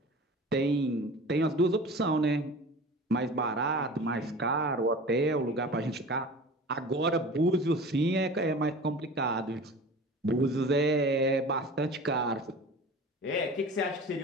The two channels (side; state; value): both; normal; correlation 0.39